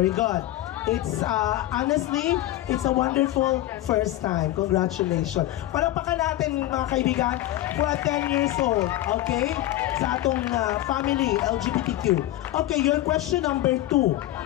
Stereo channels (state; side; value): quieter; right; 14.8 dB